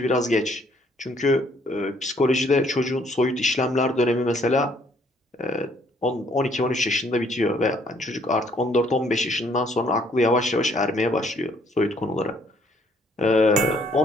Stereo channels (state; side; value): normal; both; correlation 0.65